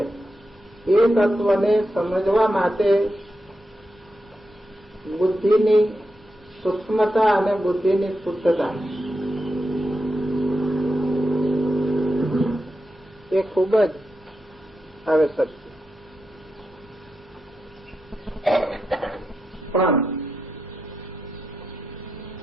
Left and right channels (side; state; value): both; normal; correlation 0.87